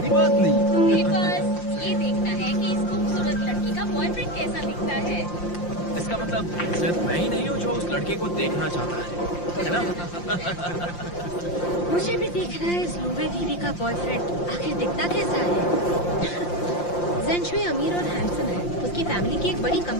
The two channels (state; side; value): late; right; 5.7 ms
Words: बात नहीं। तुम्हें बस ये देखना है कि इस खूबसूरत लड़की का बॉयफ्रेंड कैसा दिखता है। इसका मतलब सिर्फ मैं ही नहीं हूँ जो उस लड़के को देखना चाहता है ना? मुझे भी देखना है इस लूबे दीदी का बॉयफ्रेंड आखिर दिखता कैसा है। जेंशुई अमीर और हैंडसम है, उसकी फैमिली की एक बड़ी